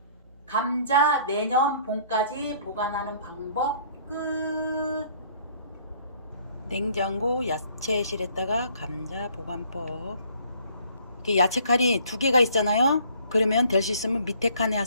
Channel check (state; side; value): inverted; both; correlation -0.58